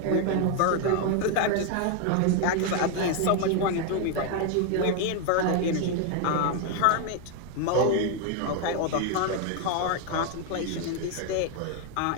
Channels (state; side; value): different; both; correlation 0.01